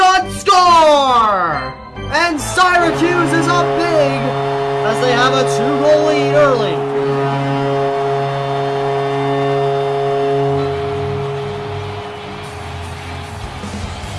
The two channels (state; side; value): identical; both; correlation 1.00